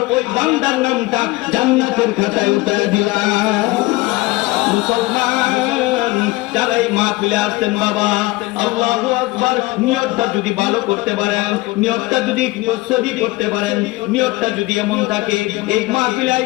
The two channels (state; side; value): quieter; right; 21.1 dB